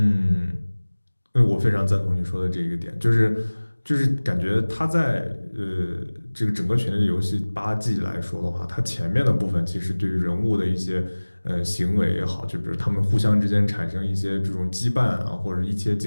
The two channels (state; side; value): inverted; both; correlation -1.00